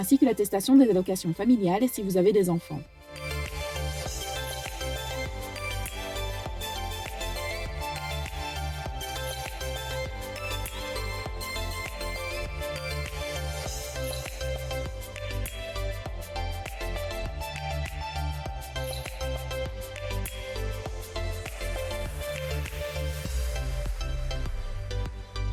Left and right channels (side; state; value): both; identical; correlation 1.00